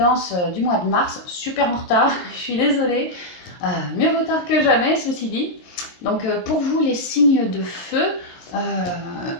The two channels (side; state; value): right; late; 22 ms